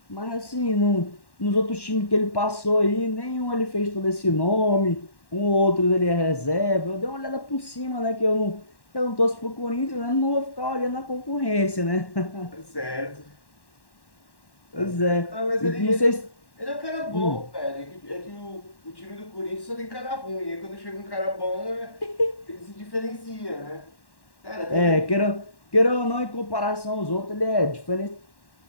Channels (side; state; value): right; late; 1.1 ms